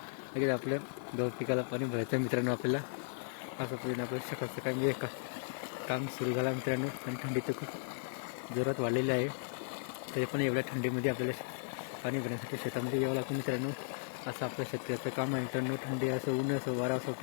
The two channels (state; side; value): silent; right; digital silence